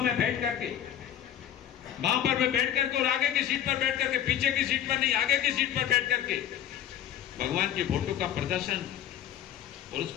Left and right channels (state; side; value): quieter; right; 10.6 dB